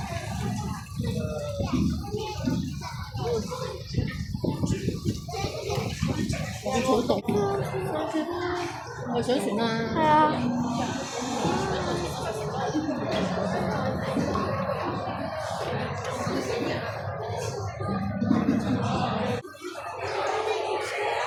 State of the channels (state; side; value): identical; both; correlation 1.00